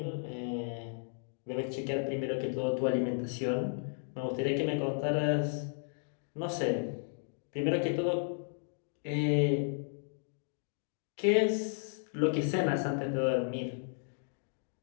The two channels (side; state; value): right; silent; digital silence